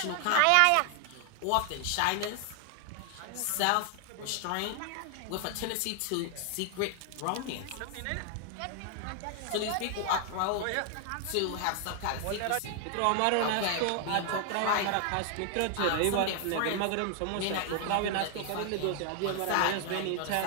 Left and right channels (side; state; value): both; different; correlation 0.00